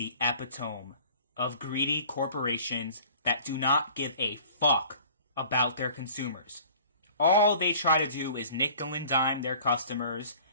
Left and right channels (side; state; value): both; inverted; correlation -0.48